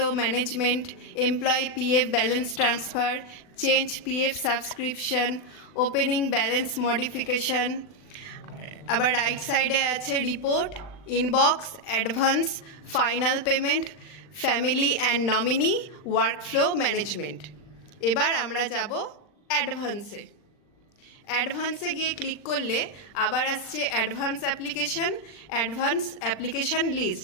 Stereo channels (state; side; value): late; right; 39 ms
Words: management, employee PF balance transfer, change PF subscription, opening balance modification. আবার রাইট সাইডে আছে report, inbox, advance, final payment, family and nominee, workflow management. এবার আমরা যাব অ্যাডভান্সে। অ্যাডভান্সে গিয়ে click করলে আবার আসছে অ্যাডভান্স অ্যাপ্লিকেশন লিস্ট।